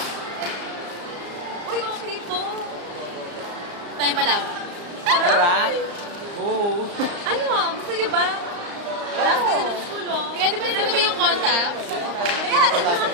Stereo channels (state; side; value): late; left; 35 ms